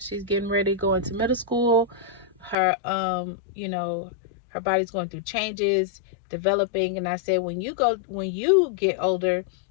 getting ready to go into middle school. Her her body's going through changes, developing. And I said, when you get older,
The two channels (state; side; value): drops out; right; at 2.6 s